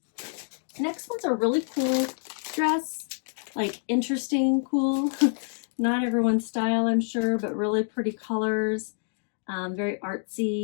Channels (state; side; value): silent; right; digital silence